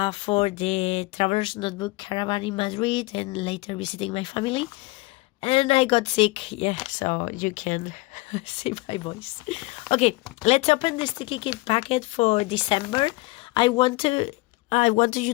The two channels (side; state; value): right; quieter; 22.3 dB